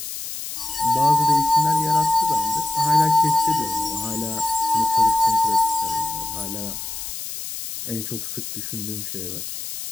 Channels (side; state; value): left; noise; hiss, 8 dB below the sound